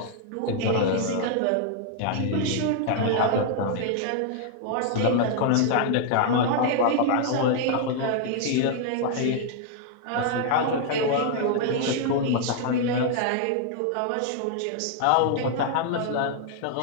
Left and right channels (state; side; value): different; both; correlation 0.00